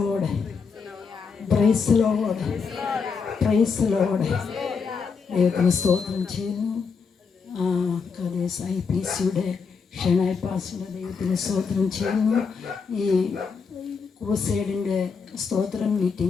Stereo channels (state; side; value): quieter; right; 5.5 dB